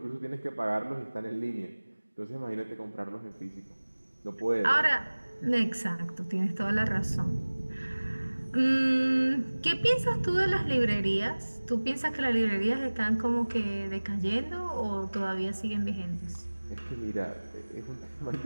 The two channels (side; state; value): both; inverted; correlation -1.00